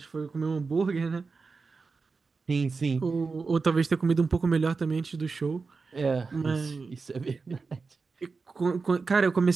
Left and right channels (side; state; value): left; quieter; 4.5 dB